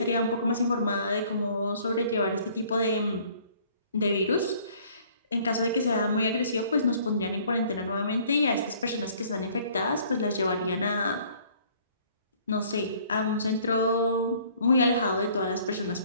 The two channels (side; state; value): both; inverted; correlation -0.57